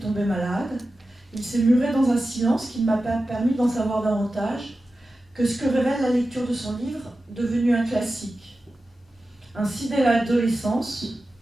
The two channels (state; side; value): normal; both; correlation 0.93